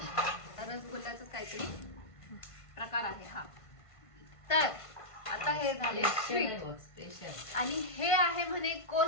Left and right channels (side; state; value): right; late; 1.5 ms